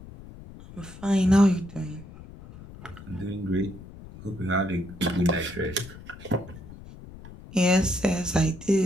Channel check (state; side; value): noise; left; rumble, 16 dB below the sound